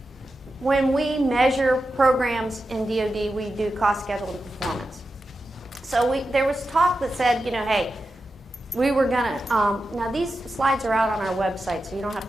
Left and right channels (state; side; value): normal; both; correlation 0.90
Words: when we measure programs in DoD, we do cost, schedule, and performance. So there was talk that said, you know, hey, we were gonna, now these slides are out on our website, so you don't have